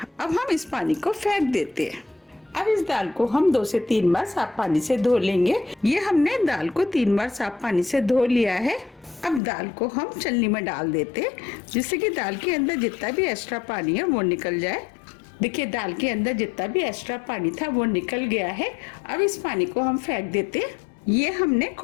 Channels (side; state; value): right; drops out; at 9.4 s